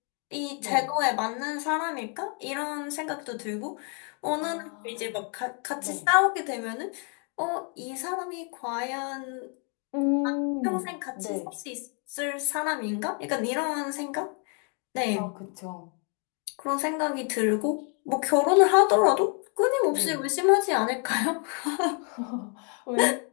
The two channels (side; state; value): right; quieter; 38.7 dB